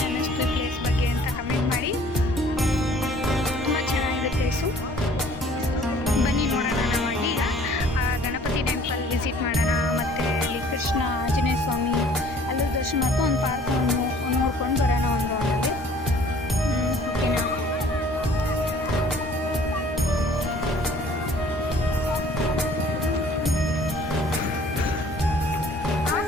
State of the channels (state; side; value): normal; both; correlation 0.53